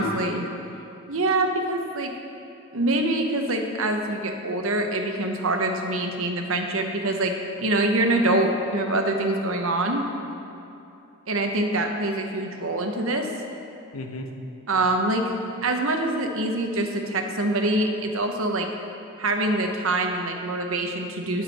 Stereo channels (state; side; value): normal; both; correlation 0.19